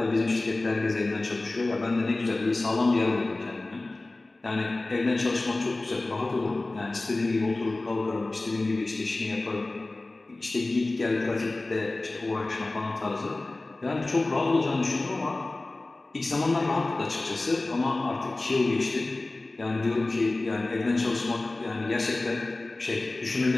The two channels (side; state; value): right; quieter; 3.0 dB